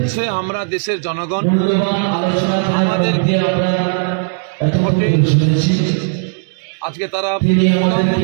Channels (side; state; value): left; silent; 69 dB below the other